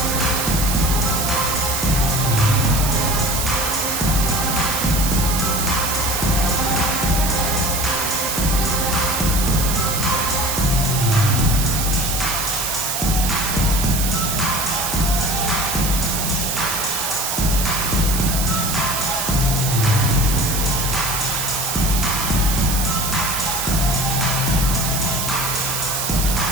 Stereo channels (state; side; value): noise; right; hiss, 2 dB below the sound